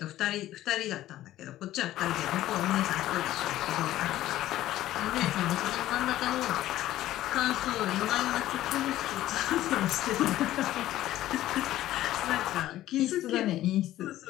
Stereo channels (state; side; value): quieter; right; 14.3 dB